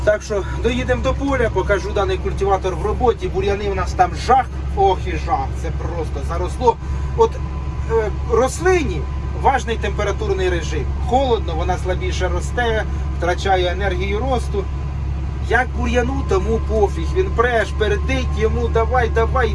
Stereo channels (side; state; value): both; identical; correlation 1.00